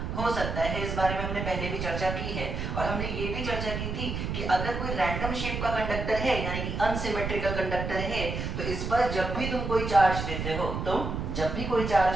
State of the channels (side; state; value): right; noise; rumble, 4 dB below the sound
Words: हो सकता है। इस बारे में हमने पहले भी चर्चा की है, और हमने ये भी चर्चा की थी कि अगर कोई रैंडम शेप का कंडक्टर है यानी कि अनसिमेट्रिकल कंडक्टर है, तो इस पर जब भी तुम कोई चार्ज देते हो